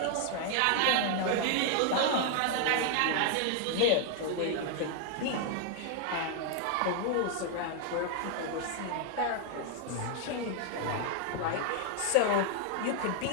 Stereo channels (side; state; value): both; different; correlation 0.00